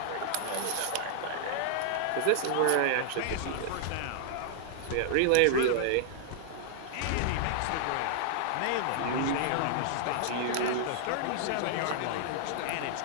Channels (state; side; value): different; both; correlation -0.01